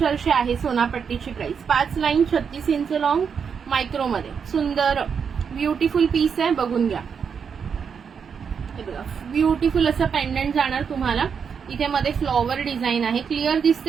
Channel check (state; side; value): quieter; left; 6.6 dB